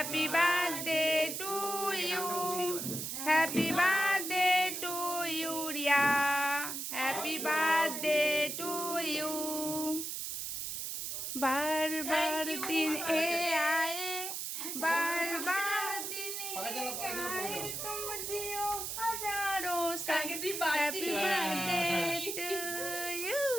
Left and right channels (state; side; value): noise; right; hiss, 4 dB below the sound